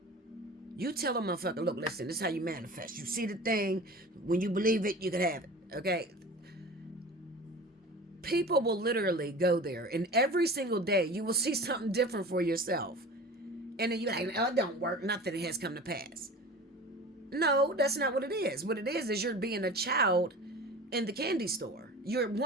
you tell a motherfucker, look, listen, this is how you manifest. You see the thing, when you believe it, you can have it. Okay? People will literally go there, and every single day you will see something different for yourself. And then you're like, oh, it don't work. Nothing has come to pass. No, that's not what it is. What it is you're being a child in the candy store. You're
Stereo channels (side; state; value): both; normal; correlation 0.37